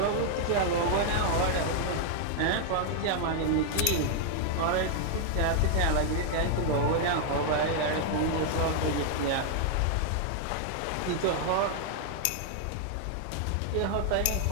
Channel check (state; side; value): different; both; correlation 0.00